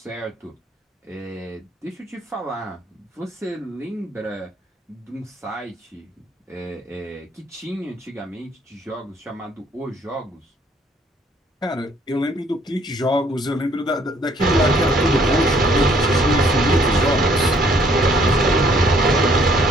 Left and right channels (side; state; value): both; normal; correlation 0.63